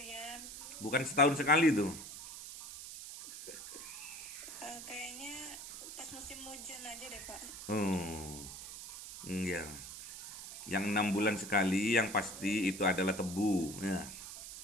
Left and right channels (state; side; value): noise; right; hiss, 11 dB below the sound